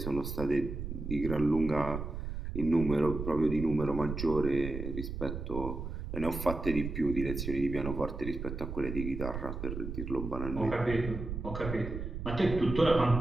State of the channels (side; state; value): right; noise; rumble, 6 dB below the sound